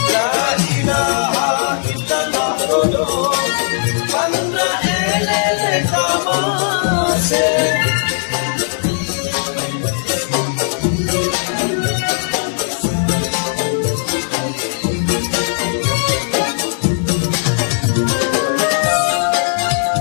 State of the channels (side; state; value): right; silent; digital silence